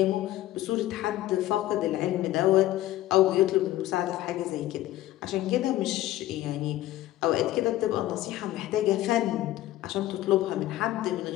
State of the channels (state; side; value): quieter; right; 15.0 dB